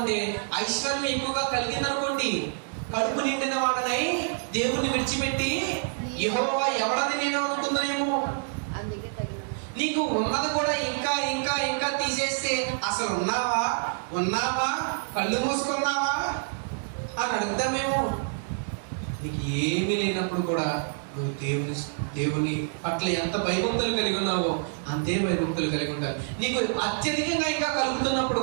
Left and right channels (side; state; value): left; silent; digital silence